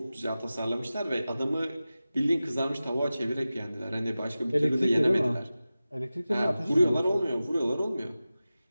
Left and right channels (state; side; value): inverted; both; correlation -0.95